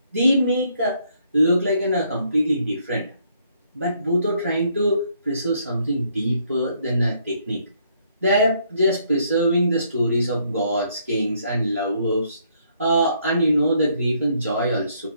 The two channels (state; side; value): inverted; both; correlation -0.69